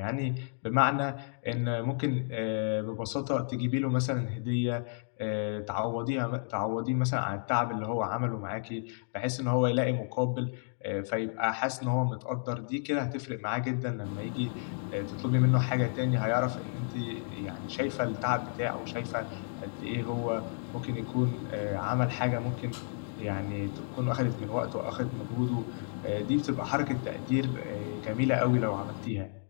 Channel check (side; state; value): right; silent; digital silence